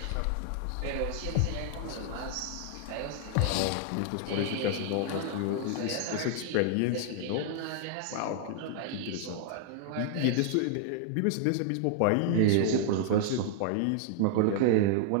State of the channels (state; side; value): different; both; correlation -0.01